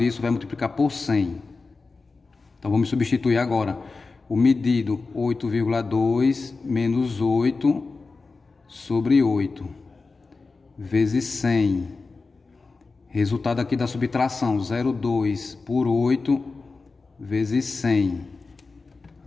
vai multiplicar por 100. Então vamos substituir agora o medido 8,2 menos 8 sobre 8 vezes 100. Resultado aqui da subtração 0,2 por 8 vezes 100.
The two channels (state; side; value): quieter; right; 4.0 dB